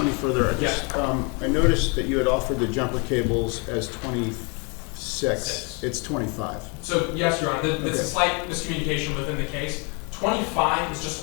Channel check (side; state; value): right; quieter; 33.5 dB